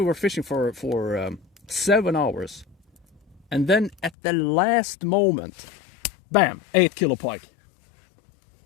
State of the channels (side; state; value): right; drops out; at 4.1 s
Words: were fishing for 7 hours, and then at the last moment, bam, 8 kilo pike.